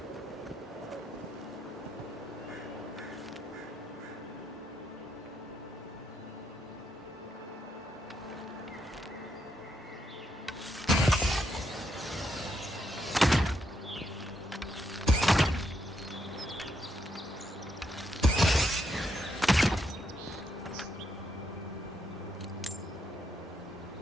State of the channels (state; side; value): normal; both; correlation 0.78